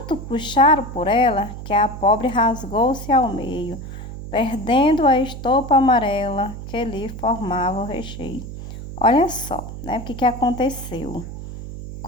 puxaram por ela que a pobre rasgou-se ao meio, perdendo a estopa amarela que lhe formava o recheio. Olha só, né, o que aconteceu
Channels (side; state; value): right; noise; hum, 10 dB below the sound